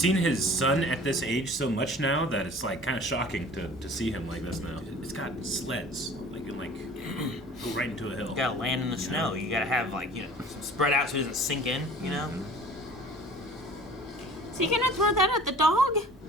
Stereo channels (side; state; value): both; normal; correlation 0.45